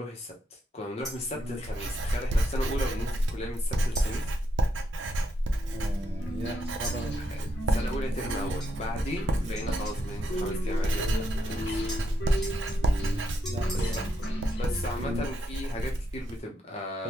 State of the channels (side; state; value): both; normal; correlation 0.79